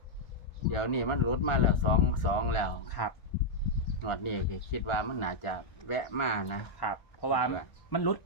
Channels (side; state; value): right; late; 1.4 ms